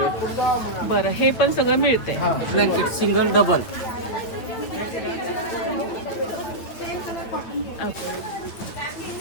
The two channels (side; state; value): right; late; 8.9 ms